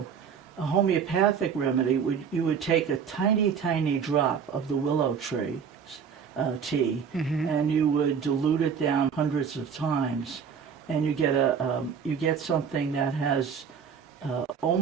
A homeopathic remedy you would take a tiny, tiny drop of the willow tree tea, and you would dilute it down hundreds of times, and you get something that has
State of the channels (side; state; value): left; quieter; 6.9 dB